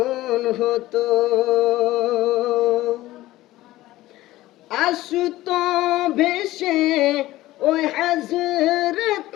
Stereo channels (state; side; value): quieter; right; 16.6 dB